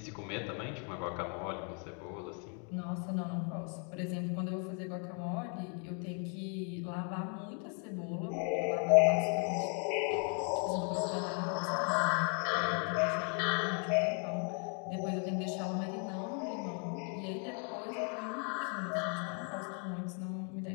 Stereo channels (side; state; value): right; quieter; 39.8 dB